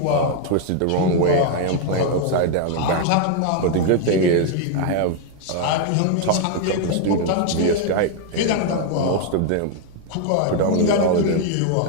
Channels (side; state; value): both; different; correlation 0.01